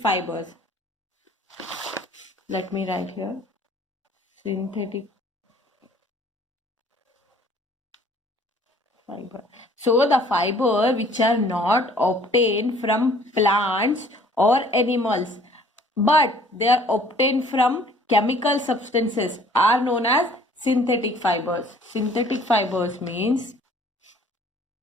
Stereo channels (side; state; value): both; normal; correlation 0.55